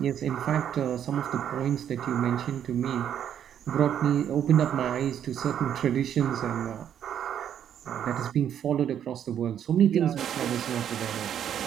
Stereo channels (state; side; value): quieter; left; 9.5 dB